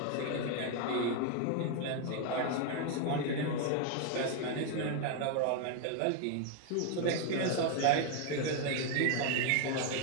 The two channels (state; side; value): different; both; correlation 0.01